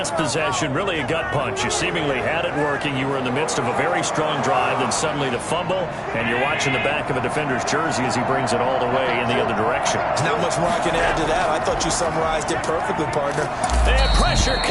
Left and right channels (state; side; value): identical; both; correlation 1.00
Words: possession, really a gut punch. You seemingly had it working. You were in the midst of a very strong drive, then suddenly the fumble, and you're watching the back of a defender's jersey as he brings it all the way in the other direction. There's not much more I can add to that. I thought you summarized it perfectly, partner. They have pressure